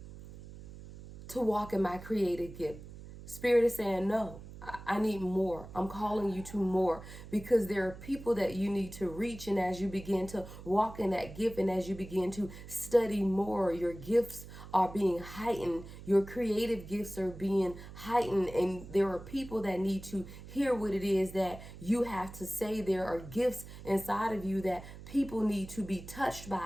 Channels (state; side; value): noise; right; hum, 14 dB below the sound